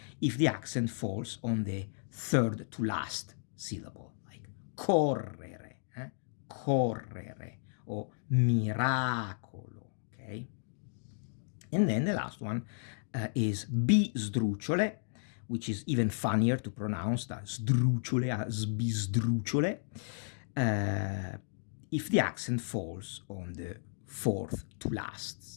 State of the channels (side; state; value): right; silent; digital silence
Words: if the accent falls on the third to last syllable, like correre, correre, or miracolo, okay? And then the last one is bisdrucciole, which is even funnier to pronounce than sdrucciole, bisdrucciole, if the accent falls on the fourth to